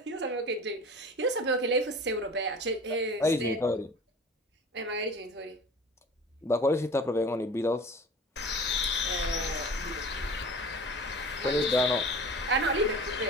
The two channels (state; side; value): normal; both; correlation 0.40